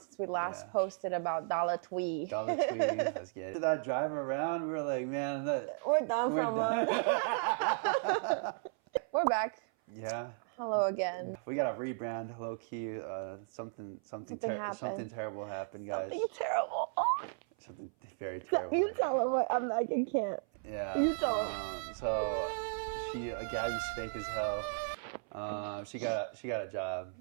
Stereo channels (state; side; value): silent; left; 54 dB below the other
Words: since we last posted about Dollar Twee. Dollar Twee, let's get it. After that drive around, we were like, man, We're done for a month. We're back. Yeah. Hello again. We got a rebrand, low key. Something terrible happened, guys. Something terrible. Oh. Something very terrible. You tell him what I'm like. I can't. Yeah. You tell him. So Gabby's fake as hell. She got a job.